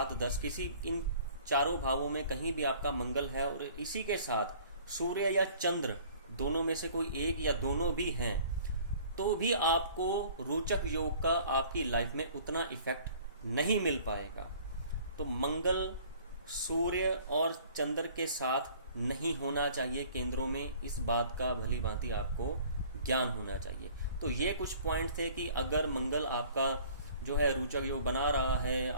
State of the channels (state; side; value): inverted; both; correlation -0.52